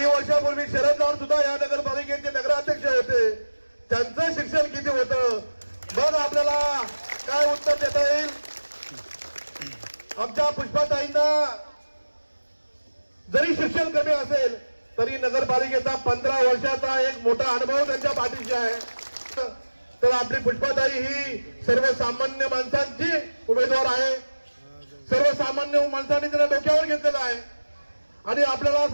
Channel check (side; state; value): both; inverted; correlation -1.00